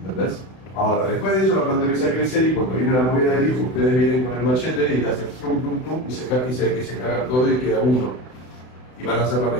Ahora, después de eso la planta empieza a crecer y cuando viene la movida del hijo, ustedes vienen con el machete y hacen tum, tum, tum, y se carga todo y queda uno. Y van a hacer la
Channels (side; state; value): right; late; 32 ms